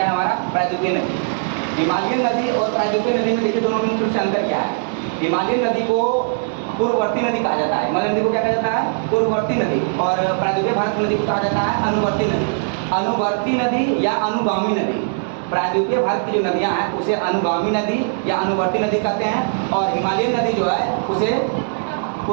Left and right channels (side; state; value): left; silent; 63 dB below the other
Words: है हमारा? प्रायद्वीपीय नदी। हिमालयन नदी और प्रायद्वीपीय नदी में देखिए दोनों में मुख्य अंतर क्या है। हिमालयन नदी को पूर्ववर्ती नदी कहा जाता है। हिमालयन नदी को क्या कहा जाता है? पूर्ववर्ती नदी। और प्रायद्वीपीय भारत नदी को कहा जाता है अनुवर्ती नदी। अनुवर्ती नदी या अनुगामी नदी। प्रायद्वीपीय भारत की जो नदियां हैं उसे अनुगामी नदी या अनुवर्ती नदी कहते हैं, और हिमालयन नदी जो है उसे